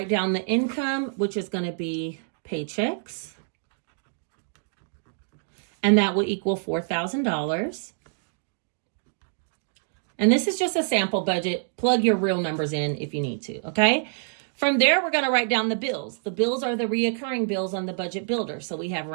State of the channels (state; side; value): silent; left; digital silence